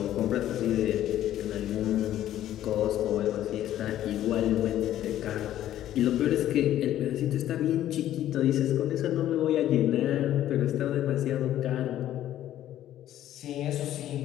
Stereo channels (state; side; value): quieter; right; 12.4 dB